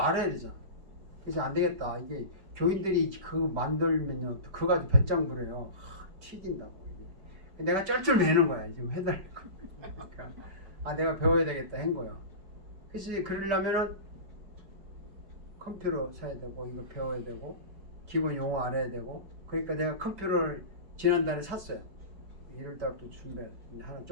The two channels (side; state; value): left; late; 5.1 ms